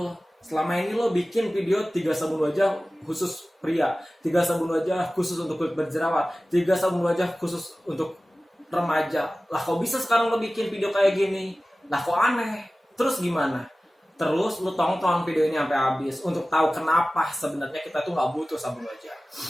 Selama ini lo bikin video 3 sabun wajah khusus pria, 3 sabun wajah khusus untuk kulit berjerawat, 3 sabun wajah khusus untuk remaja. Lah kok bisa sekarang lo bikin video kayak gini? Lah kok aneh? Terus gimana? Terus lu tonton video ini sampai habis untuk tahu kenapa sebenarnya kita tuh nggak butuh sabun wajah.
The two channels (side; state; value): both; normal; correlation 0.97